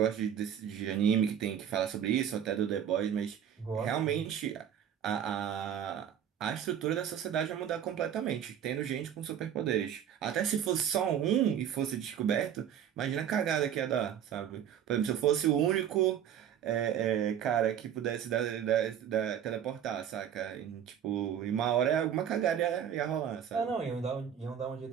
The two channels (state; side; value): quieter; left; 9.3 dB